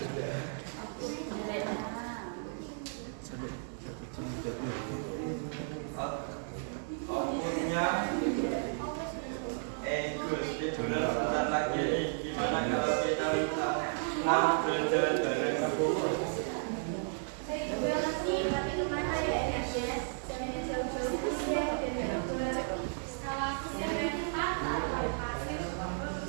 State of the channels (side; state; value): left; silent; digital silence